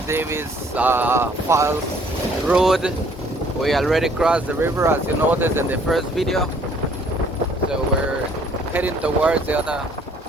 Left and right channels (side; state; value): both; normal; correlation 0.60